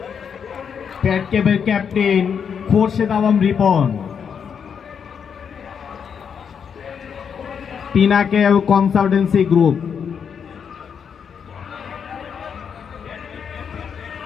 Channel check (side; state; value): right; quieter; 7.1 dB